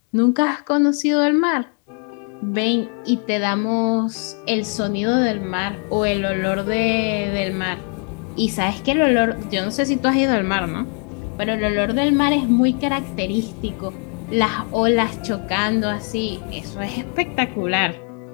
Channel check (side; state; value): right; quieter; 39.1 dB